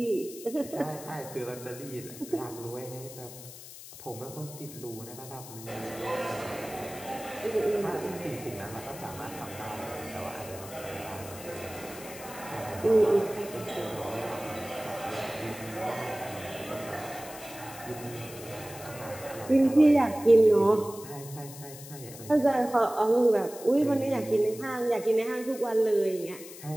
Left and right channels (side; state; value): left; noise; hiss, 15 dB below the sound